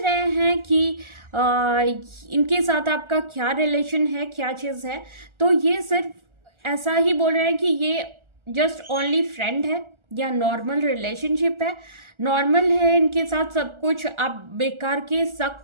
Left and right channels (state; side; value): late; left; 1.4 ms